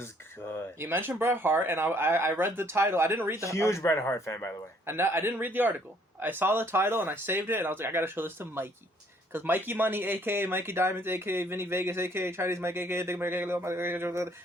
good. You mentioned Bret Hart, and I read the title. I didn't read the huge Bret Hart fan, by the way. And I didn't read the article. I saw the title and I saved it, and I was like, I gotta show this to Mikey. Because Mikey Money, a.k.a. Mikey Diamonds, a.k.a. Vinny Vegas, a.k.a. Chinese Mike, a.k.a. Big Mike, a.k.a.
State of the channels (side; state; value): both; normal; correlation 0.63